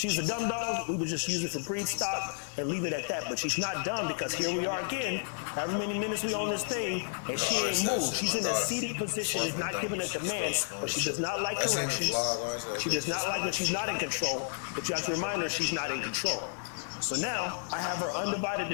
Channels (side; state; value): right; silent; 57 dB below the other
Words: a dumb dog, we would just use it for breed stock and leave it at that. But she's not dumb because here we are again, however many minutes we on this thing, and she ain't moved. She's in a seated position, is not giving a command, but she does not like corrections. She does not like when she's not in control, but you have to remind her she's not in control. So now, I have her undivided